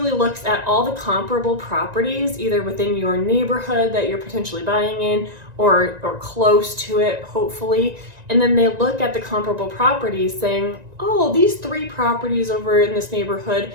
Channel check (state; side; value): late; left; 1.9 ms